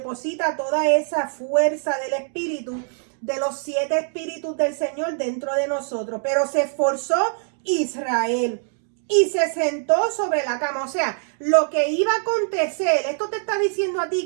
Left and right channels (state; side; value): silent; left; digital silence